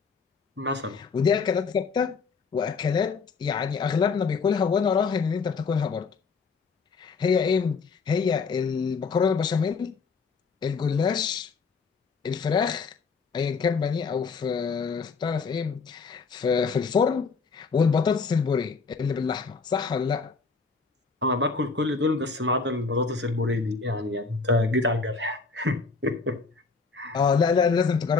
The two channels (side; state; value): right; quieter; 4.9 dB